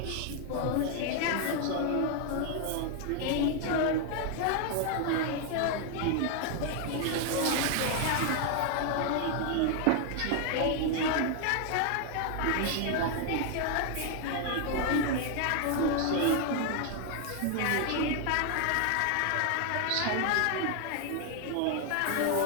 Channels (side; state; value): both; different; correlation 0.00